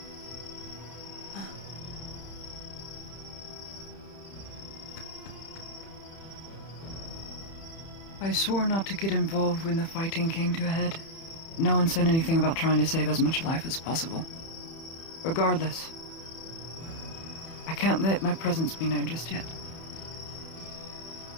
I swore not to get involved when the fighting came to a head. No one said anything about trying to save as much life as possible. Regardless, I can't let my presence be known just yet.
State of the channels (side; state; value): right; late; 31 ms